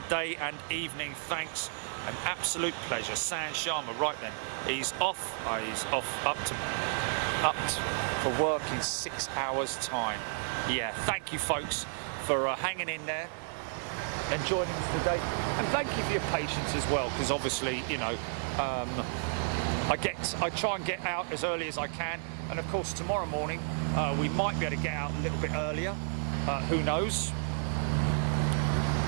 day and evening. Thanks. An absolute pleasure. San Sharma, right then. He's off. He's off up for work in 6 hours' time. Yeah, thank you folks for hanging in there and joining us today. And thank you for your patience as well, because obviously, you know, I try and get out as early as I can, and of course tomorrow morning we might be able to get out a little bit earlier. Who knows?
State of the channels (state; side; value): silent; left; 56 dB below the other